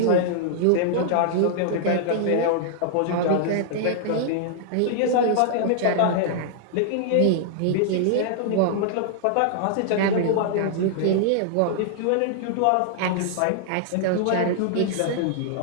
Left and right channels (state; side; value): different; both; correlation -0.01